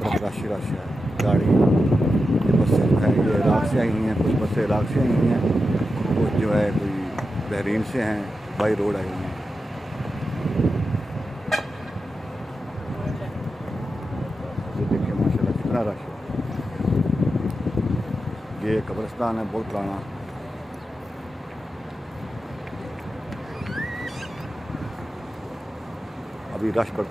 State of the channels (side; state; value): both; normal; correlation 0.90